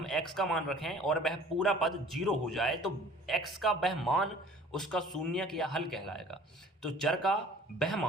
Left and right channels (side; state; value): both; normal; correlation 0.49